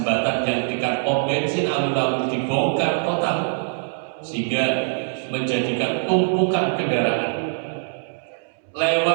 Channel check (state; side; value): silent; left; 64 dB below the other